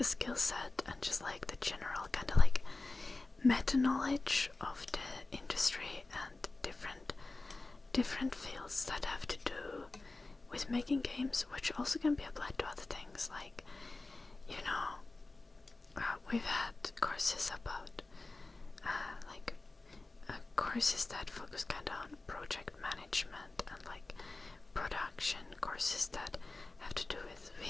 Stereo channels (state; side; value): quieter; right; 3.3 dB